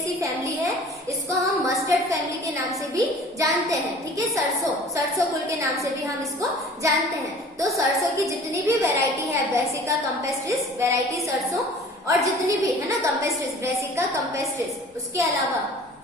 फैमिली है, इसको हम मस्टर्ड फैमिली के नाम से भी जानते हैं, ठीक है। सरसों कुल के नाम से भी हम इसको जानते हैं। तो सरसों की जितनी भी वेराइटी है, ब्रेसिका कैम्पेस्ट्रिस वेराइटी सरसों, और जितनी भी है ना कैम्पेस्ट्रिस, ब्रेसिका कैम्पेस्ट्रिस, उसके अलावा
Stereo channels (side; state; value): both; normal; correlation 0.47